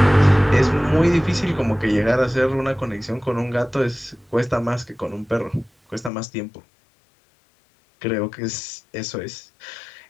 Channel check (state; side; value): drops out; right; at 6.1 s